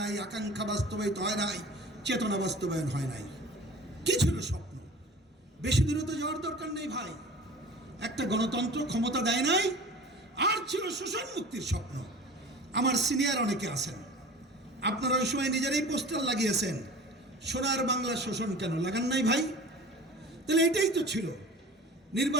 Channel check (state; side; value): normal; both; correlation 0.40